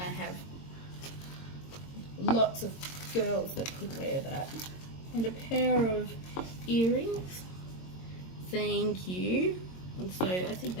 I have lots of girls that could wear that. And a pair of earrings. Thank you. And so I think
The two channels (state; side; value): late; right; 22 ms